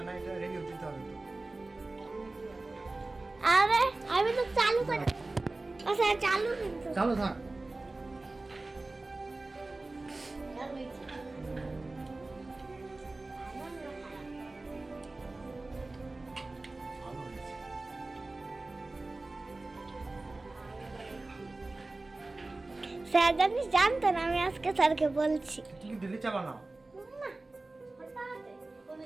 না এটা রিভিউ দিতে হবে তো আরে আমি তো চালু করে আচ্ছা চালু কিন্তু চালু থাক আর হইছে ভালো হয়েছে স্যার জানিস জানতো না, আমি আজকে স্যারকে বলছি। তুমি দিল্লি চাবা না না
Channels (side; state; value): left; quieter; 3.1 dB